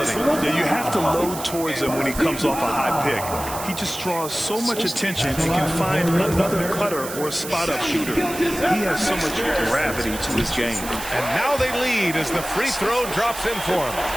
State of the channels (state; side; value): noise; right; hiss, 10 dB below the sound